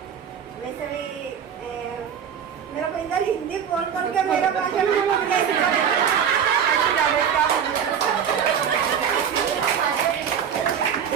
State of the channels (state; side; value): quieter; left; 8.0 dB